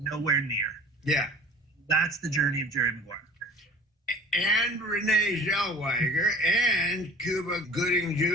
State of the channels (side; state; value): both; normal; correlation 0.45